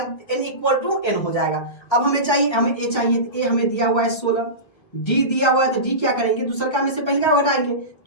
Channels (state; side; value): late; right; 1.3 ms